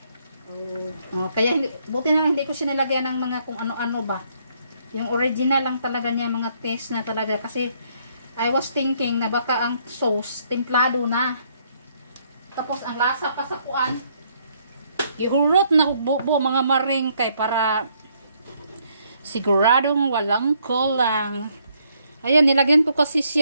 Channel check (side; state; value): both; inverted; correlation -0.70